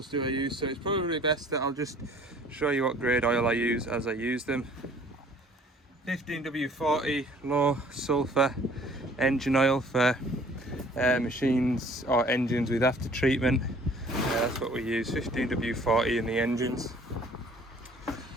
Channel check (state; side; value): normal; both; correlation 0.54